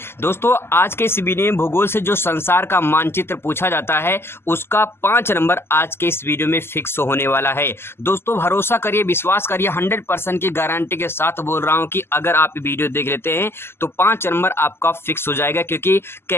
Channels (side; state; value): right; late; 0.12 ms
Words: दोस्तों, आज के इस वीडियो में भूगोल से जो संसार का मानचित्र पूछा जाता है उसका 5 नंबर आज के इस वीडियो में फिक्स होने वाला है। दोस्तों, भरोसा करिए, विश्वास करिए, 100% की गारंटी के साथ बोल रहा हूं कि अगर आप वीडियो देख लेते हैं तो 5 नंबर आपका फिक्स हो जाएगा। क्योंकि